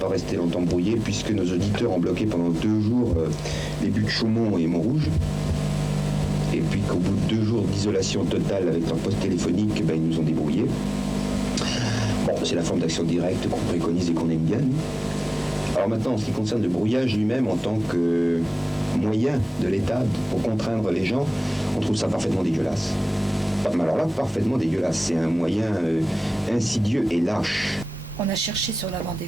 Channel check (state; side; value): normal; both; correlation 0.98